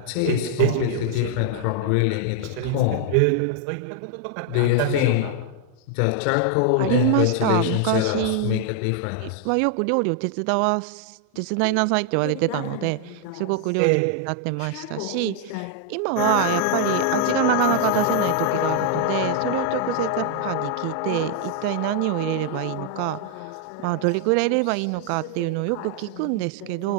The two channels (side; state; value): both; different; correlation 0.00